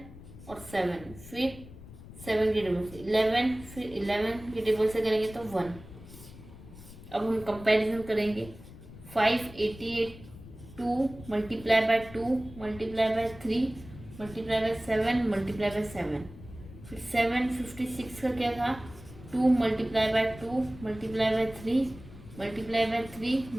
और 7, फिर 7 के टेबल से 11, फिर 11 के टेबल से करेंगे तो 1। अब हम कंपैरिजन करेंगे 588 2 multiply by 2 multiply by 3 multiply by 7 multiply by 7, फिर 756 का क्या था 2 multiply by 2 multiply by 3 multiply by 3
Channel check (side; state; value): left; noise; rumble, 17 dB below the sound